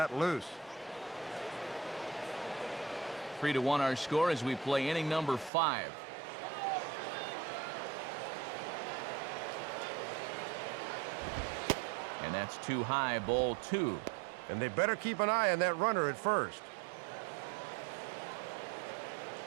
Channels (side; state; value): left; drops out; at 5.5 s